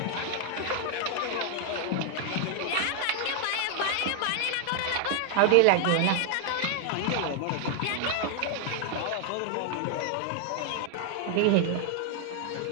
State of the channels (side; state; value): both; different; correlation 0.00